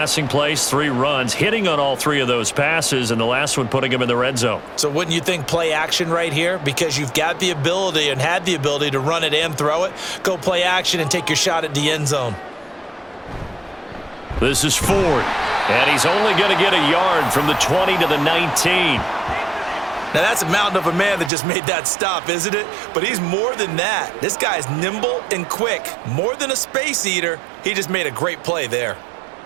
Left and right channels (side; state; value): left; drops out; at 21.3 s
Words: plays, 3 runs, hitting on all 3 of those passes, and the last one putting him in the red zone. So wouldn't you think play action right here? Because you've got the ability and had the ability to run it and throw it. Go play action and take your shot at the end zone. This is Ford, and he's only going to get a yard from the 20 to the 19. Now, that's a mountain of a man that just made that stop, isn't it? But he's more than that. This guy's nimble and quick. More than a space eater, he just made a great play there.